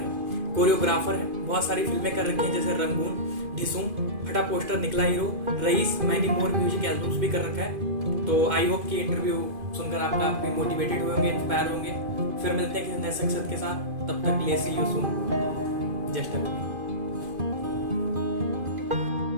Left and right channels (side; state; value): left; late; 2.5 ms